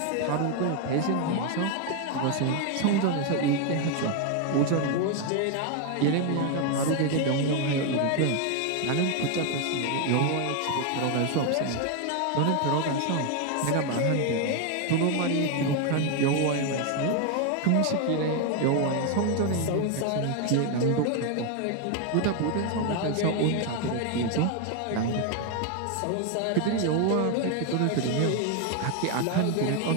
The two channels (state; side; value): different; both; correlation 0.01